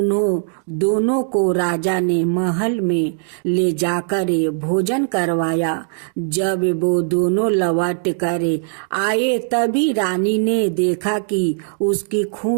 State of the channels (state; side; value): silent; left; digital silence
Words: दोनों को राजा ने महल में ले जाकर भोजन करवाया। जब वो दोनों लौट कर आए तभी रानी ने देखा कि उसकी